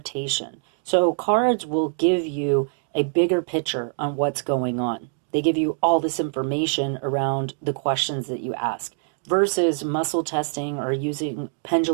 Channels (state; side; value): silent; left; digital silence